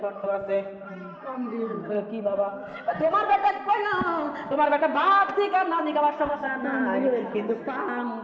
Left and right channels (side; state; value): both; identical; correlation 1.00